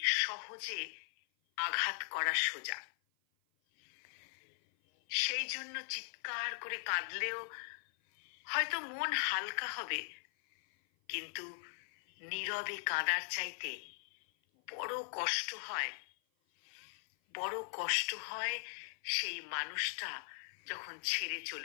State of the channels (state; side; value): silent; right; 52 dB below the other